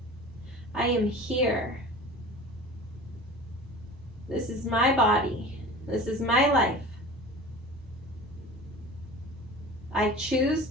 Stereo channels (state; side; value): normal; both; correlation 0.38